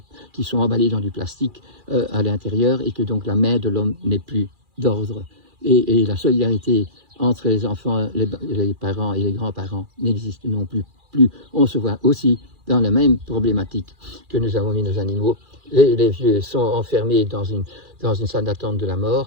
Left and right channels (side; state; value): left; late; 2.4 ms